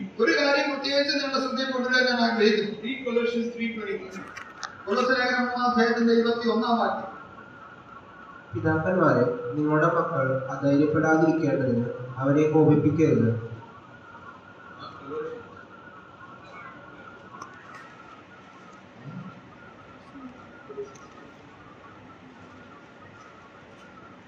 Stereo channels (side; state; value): both; identical; correlation 1.00